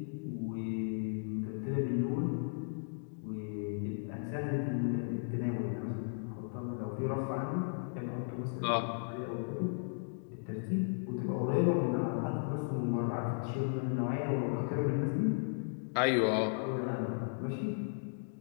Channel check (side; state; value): right; silent; digital silence